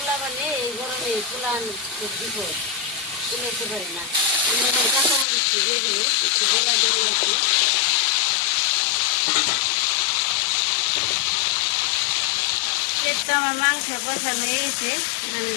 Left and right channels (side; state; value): right; drops out; at 5.2 s